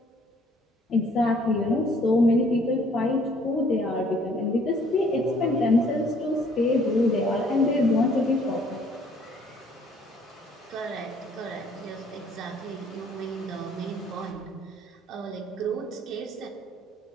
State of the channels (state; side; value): normal; both; correlation 0.60